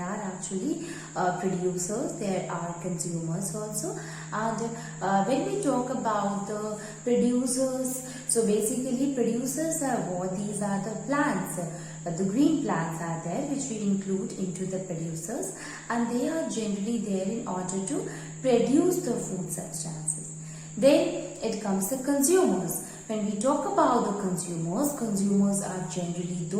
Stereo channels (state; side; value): identical; both; correlation 1.00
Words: actually producers, there are consumers also, and when we talk about the producers, so basically producers are what? These are the plants. The green plants are there which we include into the producers, and they are generally there in order to produce the food substances. Then it comes the consumers. When we talk about the consumers are generally